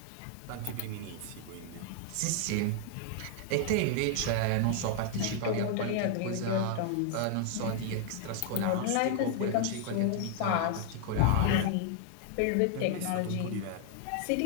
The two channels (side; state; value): both; different; correlation 0.00